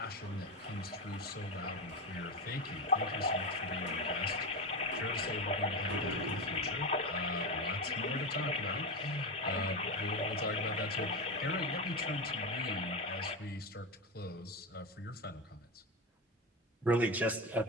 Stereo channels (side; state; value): both; normal; correlation 0.17